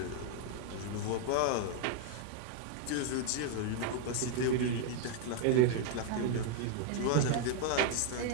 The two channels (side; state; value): both; different; correlation 0.00